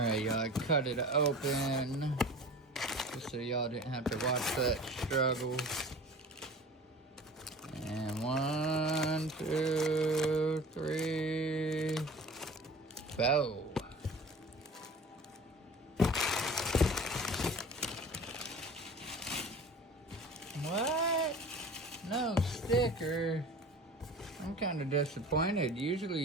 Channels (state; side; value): normal; both; correlation 0.41